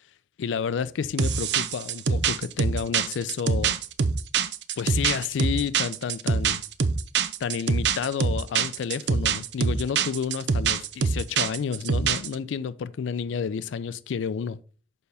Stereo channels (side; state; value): both; normal; correlation 0.37